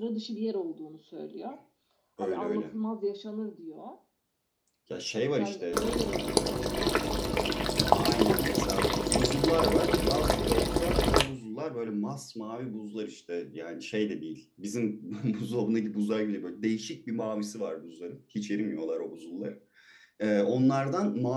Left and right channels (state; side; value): identical; both; correlation 1.00